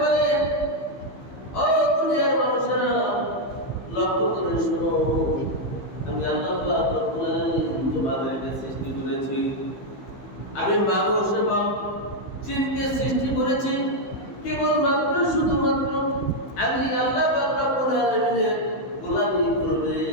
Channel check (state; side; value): late; right; 15 ms